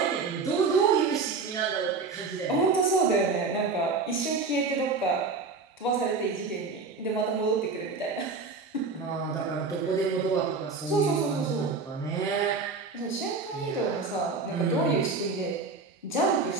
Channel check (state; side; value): quieter; left; 4.4 dB